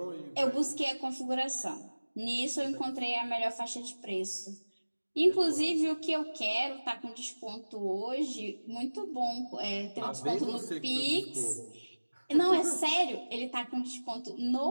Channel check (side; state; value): both; inverted; correlation -1.00